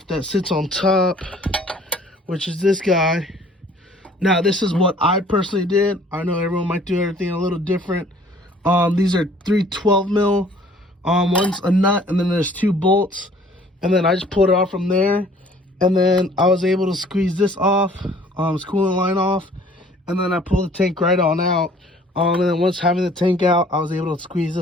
that sits on top, which is this guy. Now, this is what I personally did. I know everyone might do everything a little different. These are 3 12 mil. One's a nut, and then there's 2 bolts. And then I just pulled it off from there. And then I was able to squeeze this off, this coolant line off. And then I pulled the tank right on out. And then once having the tank out, I was able to squeeze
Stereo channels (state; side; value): normal; both; correlation 0.55